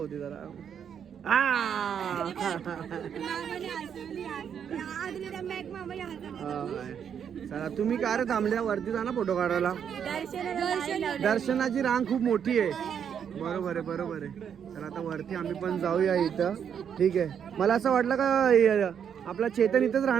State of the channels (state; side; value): quieter; left; 8.1 dB